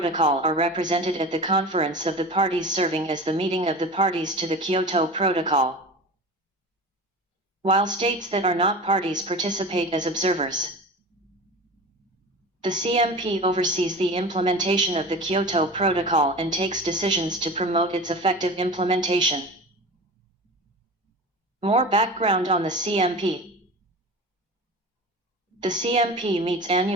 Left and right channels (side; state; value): both; normal; correlation 0.33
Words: are represented at the Conference of the Parties serving as the meeting of the parties to the Kyoto Protocol, while states that are not parties participate as observers. The CMP oversees the implementation of the Kyoto Protocol and takes decisions to promote its effective implementation. More background on the CMP. The CMP meets